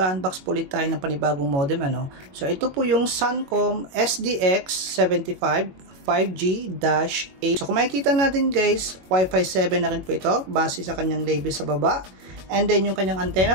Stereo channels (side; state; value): left; late; 22 ms